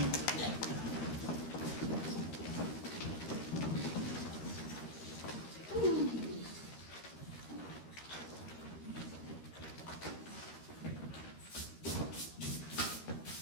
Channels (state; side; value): late; right; 13 ms